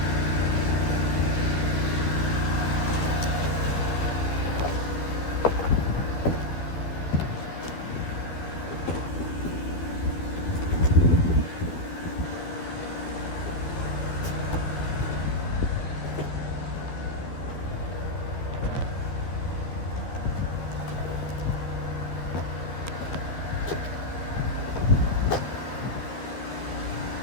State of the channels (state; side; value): late; right; 12 ms